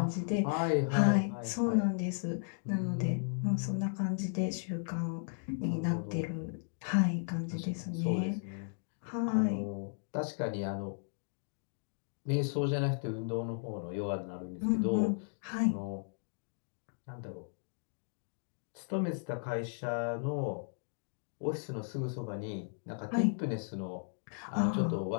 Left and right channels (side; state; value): right; silent; digital silence